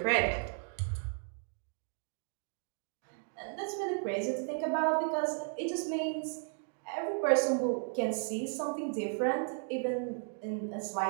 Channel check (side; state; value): left; silent; 55 dB below the other